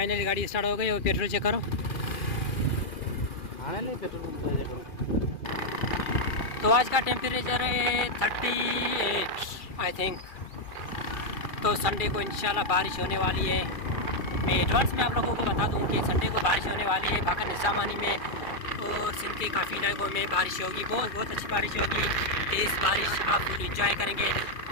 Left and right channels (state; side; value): late; right; 2.4 ms